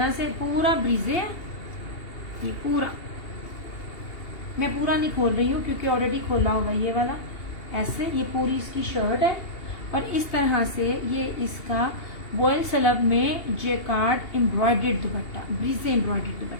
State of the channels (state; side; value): late; right; 2.8 ms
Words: से पूरा ब्रीजे है, ये पूरा मैं पूरा नहीं खोल रही हूँ क्योंकि ऑलरेडी खोला हुआ ये वाला। ऐसे ये पूरी इसकी शर्ट है, और इस तरह से ये इसका वॉयल सलब में जेकार्ड एम्ब्रॉयडर्ड दुपट्टा, ब्रीजे एम्ब्रॉयडर्ड